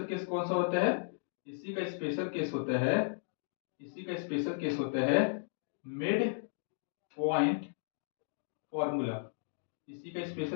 केस कौन सा होता है, इसी का स्पेशल केस होता है मिड पॉइंट फॉर्मूला। इसी का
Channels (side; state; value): right; silent; digital silence